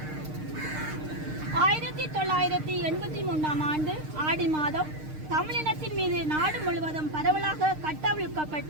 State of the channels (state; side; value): late; left; 6.5 ms